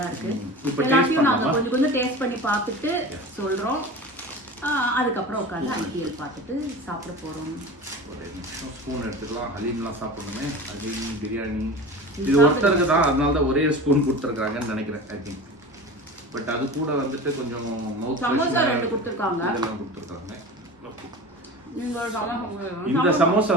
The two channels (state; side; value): normal; both; correlation 0.33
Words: இருக்கு. எல்லாத்தையும் நாங்கள் கொஞ்சம் கொஞ்சம் டேஸ்ட் பண்ணி பார்த்துட்டு சொல்கிறோம். அதுக்கப்புறம் உட்காந்து ஐடிஎல் பார்த்துட்டு சாப்பிட போகிறோம். ஒரு நிமிஷம் ஸ்பூன் எடுத்துக்கலாம். ஹலீம்லாம் சாப்பிடணுமே. ஹலீம் பிரியாணி இது ஒருத்தருக்கு தான், அதனால தான் ஒரே ஸ்பூன் கொடுத்துருக்காங்கன்னு நினைக்கிறேன். ஐ திங்க் பட் அது கூட வந்துட்டு கொஞ்சம் மவுத் சமோசா 2 கொடுத்துருக்காங்க. இதெல்லாம் கொடுத்துருக்காங்க. இந்த இந்த சமோசா